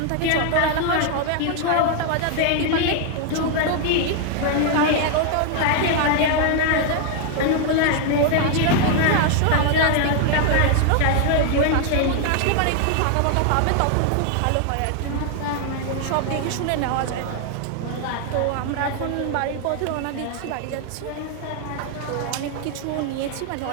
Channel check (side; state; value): both; different; correlation 0.00